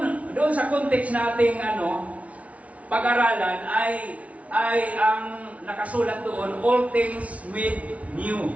sa context nating pag-aralan ay ang nakasulat doon, all things made new.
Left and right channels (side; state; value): left; late; 0.066 ms